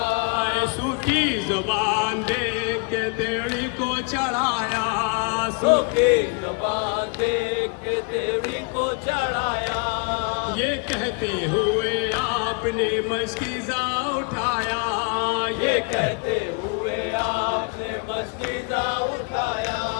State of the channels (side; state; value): right; quieter; 35.1 dB